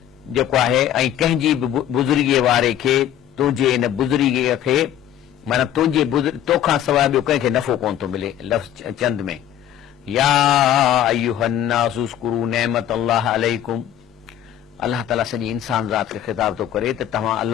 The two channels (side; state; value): right; quieter; 10.9 dB